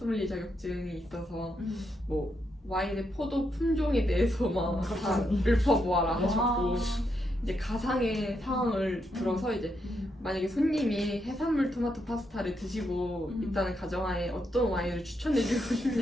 자격증이 있어서 뭐 와인의 포도 품종에 대해서 막 다 읊어보아라 하셨고 이제 가상의 상황을 들어서 이제 만약에 손님이 해산물 토마토 파스타를 드시고 있다는 가정하에 어떤 와인을 추천해주고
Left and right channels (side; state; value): both; normal; correlation 0.81